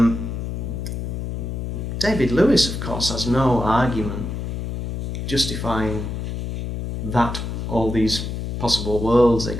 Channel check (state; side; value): noise; left; hum, 4 dB below the sound